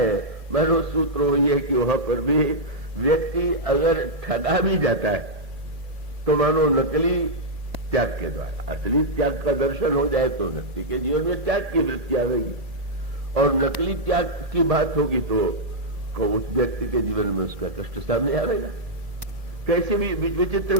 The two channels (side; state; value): left; late; 2.4 ms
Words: मानो सूत्र वही है कि वहां पर भी व्यक्ति अगर ठगा भी जाता है तो मानो नकली त्याग के द्वारा असली त्याग का दर्शन हो जाए तो व्यक्ति के जीवन में त्याग की वृत्ति आएगी, और नकली त्याग की बात होगी तो उस व्यक्ति के जीवन में उसका कष्ट सामने आएगा। कैसे भी विचित्र